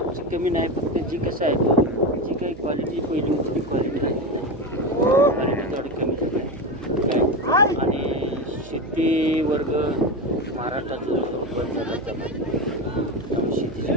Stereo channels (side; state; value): right; noise; hum, 16 dB below the sound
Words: कमी नाही, फक्त जी कसं आहे जी काही क्वालिटी पहिली होती ती क्वालिटी आहे. क्वालिटी थोडी कमी झाली आहे. आणि शेती वर्ग महाराष्ट्रात बंद झाला. त्यामुळे